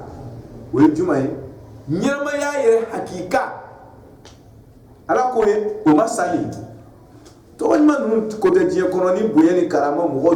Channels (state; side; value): identical; both; correlation 1.00